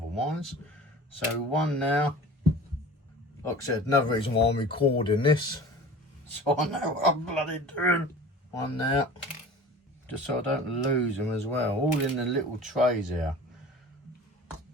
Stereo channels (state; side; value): normal; both; correlation 0.40